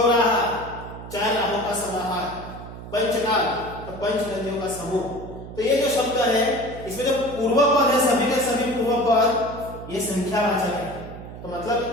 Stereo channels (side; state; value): right; noise; hum, 13 dB below the sound